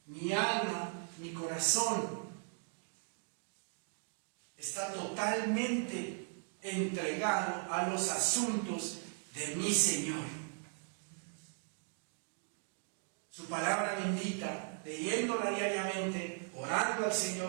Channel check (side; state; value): left; silent; 53 dB below the other